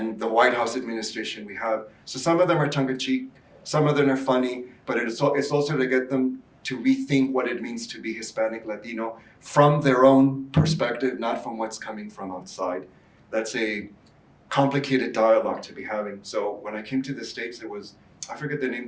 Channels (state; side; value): identical; both; correlation 1.00